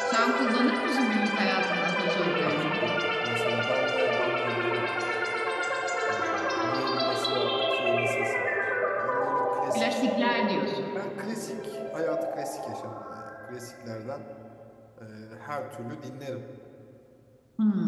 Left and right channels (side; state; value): both; identical; correlation 1.00